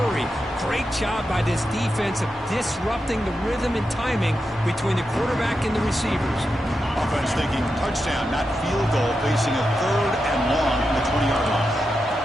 Great job by this defense of disrupting the rhythm and timing between the quarterback and the receivers. Offense thinking touchdown, not field goal, facing a 3rd and long from the 20-yard line.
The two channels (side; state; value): both; normal; correlation 0.88